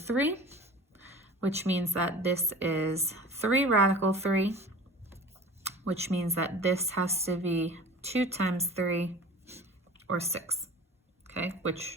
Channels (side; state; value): both; normal; correlation 0.40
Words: which means that this is 3 radical 3, which means that this has to be 2 times 3, or 6, okay,